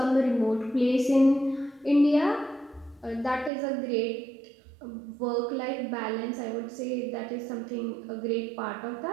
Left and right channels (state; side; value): drops out; left; at 3.5 s